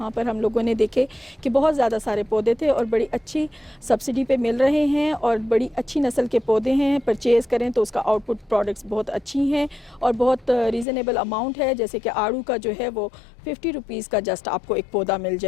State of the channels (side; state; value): right; drops out; at 10.9 s